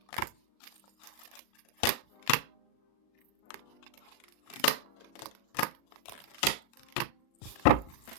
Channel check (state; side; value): late; right; 38 ms